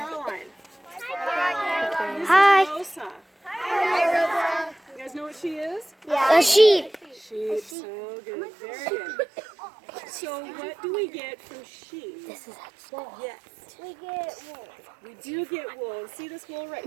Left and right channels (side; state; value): left; drops out; at 7.8 s